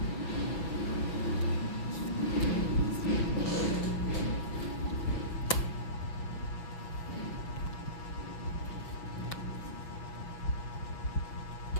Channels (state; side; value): late; right; 6.3 ms